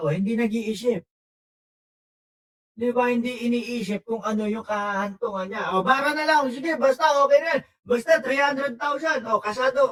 hindi nag-iisip. Di ba, hindi iniisip kung ano yung kahantungan niya. Bara na lang, sige, basta okay na. Basta 300,000,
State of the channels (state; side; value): identical; both; correlation 1.00